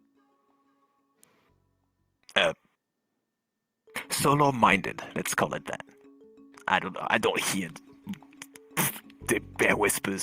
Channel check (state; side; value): identical; both; correlation 1.00